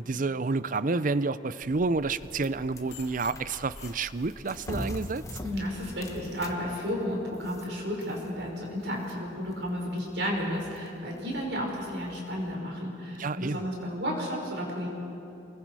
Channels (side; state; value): both; normal; correlation 0.43